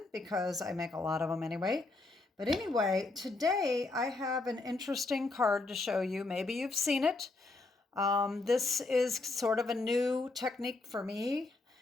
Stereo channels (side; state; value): right; quieter; 3.3 dB